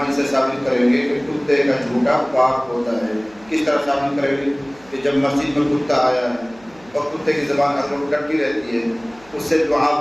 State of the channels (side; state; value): right; noise; hum, 26 dB below the sound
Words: سے ثابت کریں گے کہ کتے کا جھوٹا پاک ہوتا ہے۔ کس طرح ثابت کریں گے؟ کہ جب مسجد میں کتا آیا ہے اور کتے کی زبان ہر وقت ڈٹی رہتی ہے، اس سے